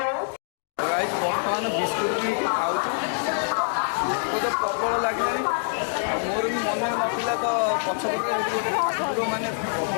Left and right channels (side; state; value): right; silent; digital silence